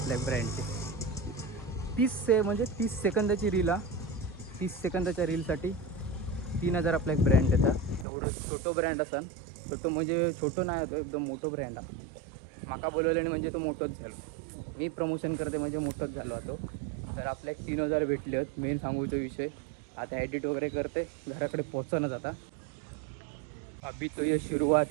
ब्रँडचे 30 सेकंदाची रील 30 सेकंदाच्या रीलसाठी 3000 आपला एक ब्रँड येतात एवढं छोटं ब्रँड असाल तर तो म्हणजे छोटं नाही होतो एकदम मोठं ब्रँड आहे माका बोलवल्याने म्हणजे तो मोठंच झालो मी प्रमोशन करते म्हणजे मोठंच झालो होतो तर आपल्या 3000 भेटले आहेत मेन सांगूचा विषय आता एडिट वगैरे करते घराकडे पोहोचणं जाता अभी तो ये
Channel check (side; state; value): left; drops out; at 8.1 s